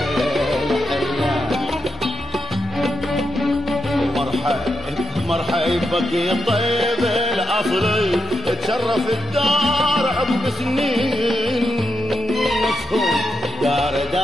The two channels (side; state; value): both; normal; correlation 0.85